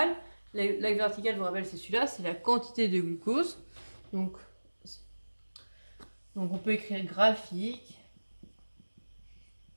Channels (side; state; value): both; inverted; correlation -1.00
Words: L'axe vertical, je vous rappelle, c'est celui-là, c'est la quantité de glucose. Donc on peut écrire graphique,